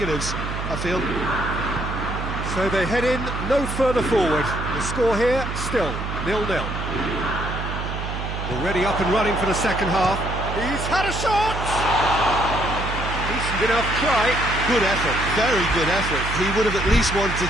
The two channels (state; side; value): noise; right; hum, 5 dB below the sound